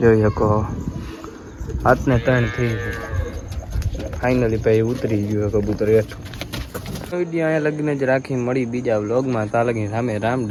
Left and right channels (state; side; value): identical; both; correlation 1.00